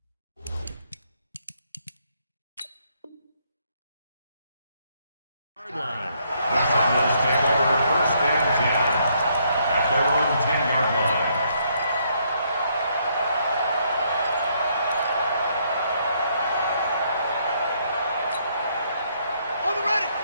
Line. The Cardinals take over first and 10 at their own 10-yard line. On the ready.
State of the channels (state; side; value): inverted; both; correlation -0.71